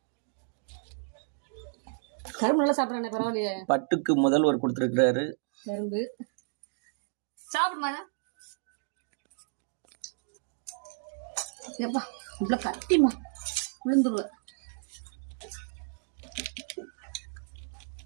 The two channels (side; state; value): left; silent; digital silence